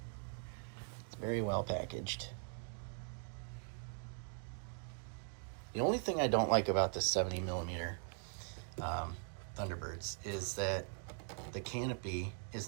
It's very well packaged. The only thing I don't like about this 70mm Thunderbirds is that the canopy is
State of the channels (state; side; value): silent; left; 50 dB below the other